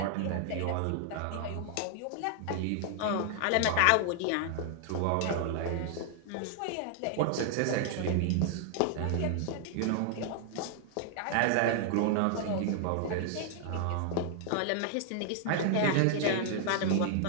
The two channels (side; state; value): both; different; correlation 0.00